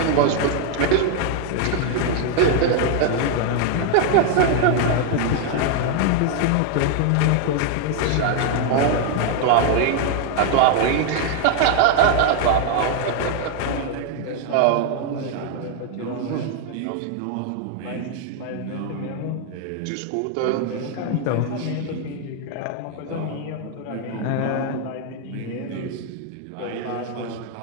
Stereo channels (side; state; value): both; different; correlation 0.00